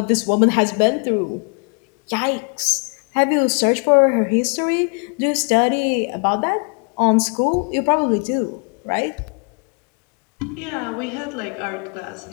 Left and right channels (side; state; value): right; quieter; 36.2 dB